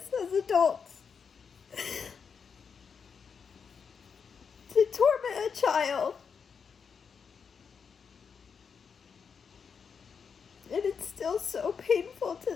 as adults. To torment a child. And it's still so painful to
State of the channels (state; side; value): quieter; right; 6.2 dB